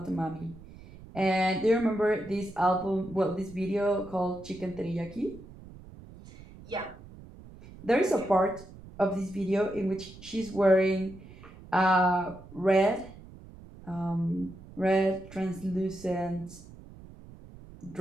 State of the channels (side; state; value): right; noise; rumble, 18 dB below the sound